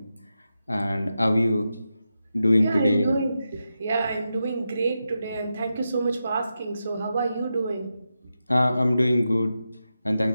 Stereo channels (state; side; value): inverted; both; correlation -0.89